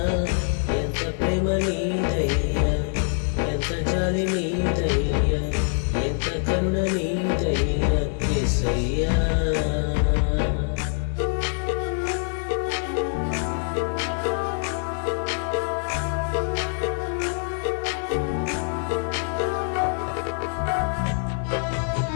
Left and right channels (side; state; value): right; silent; 62 dB below the other